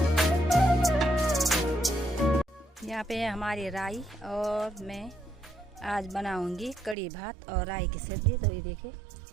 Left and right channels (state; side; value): drops out; left; at 7.0 s